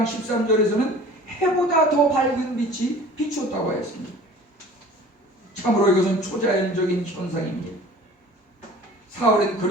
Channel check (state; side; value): normal; both; correlation 0.45